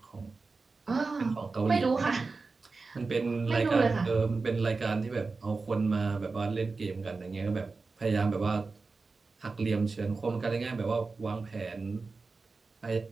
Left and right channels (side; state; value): left; quieter; 4.1 dB